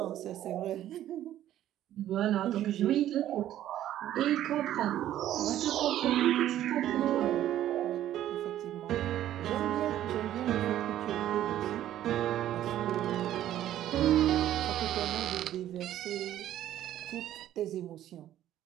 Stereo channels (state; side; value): quieter; left; 12.4 dB